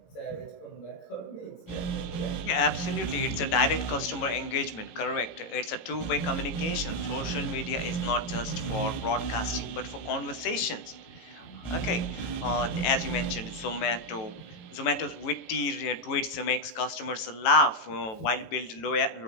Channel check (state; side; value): late; right; 18 ms